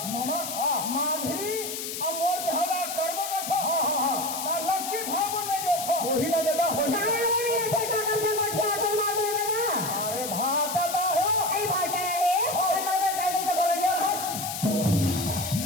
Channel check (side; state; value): left; noise; hiss, 6 dB below the sound